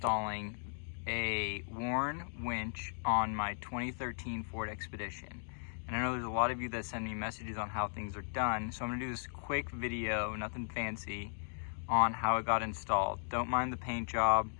a worn winch on my 2013 Ford Expedition. And I know there's a lot of you that send me messages on how things are done. So I'm gonna do this quick video, nothing fancy, on how it got installed. Don't mind the paint job,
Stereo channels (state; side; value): silent; right; digital silence